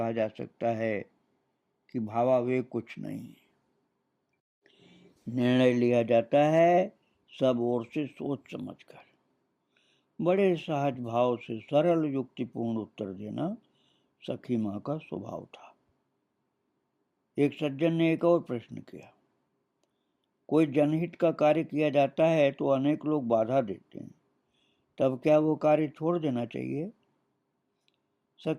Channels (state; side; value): identical; both; correlation 1.00